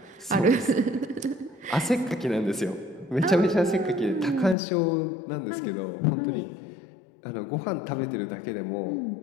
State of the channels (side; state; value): right; drops out; at 4.5 s